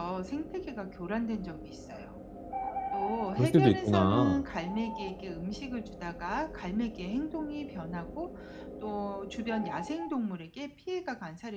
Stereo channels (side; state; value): both; identical; correlation 1.00